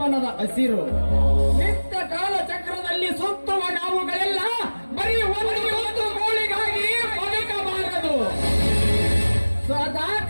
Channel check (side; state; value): both; inverted; correlation -1.00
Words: ಹಸಿರು. ನಿತ್ಯ ಕಾಲಚಕ್ರದಲ್ಲಿ ಸುತ್ತುವ ನಾವುಗಳೆಲ್ಲ ಬರೀ ಒಂದು ಗೋಳಿಗಾಗಿ ಬದುಕಬಾರದು.